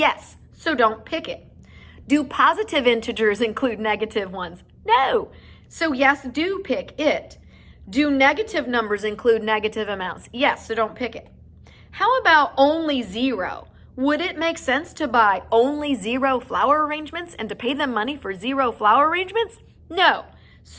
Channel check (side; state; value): both; identical; correlation 1.00